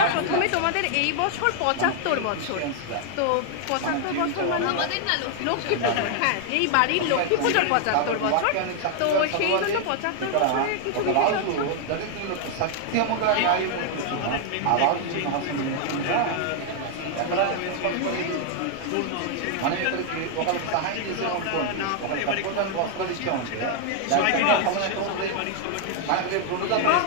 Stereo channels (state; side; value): different; both; correlation 0.00